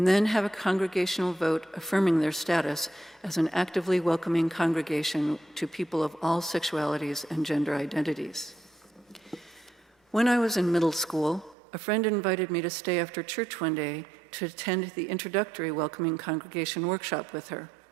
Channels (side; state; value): left; drops out; at 11.6 s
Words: then have a congregational vote affirming their status as an actively welcoming congregation to people of all sexualities and gender identities. When I was in middle school, a friend invited me to stay after church one day to attend the introductory Welcoming Congregation workshop with her.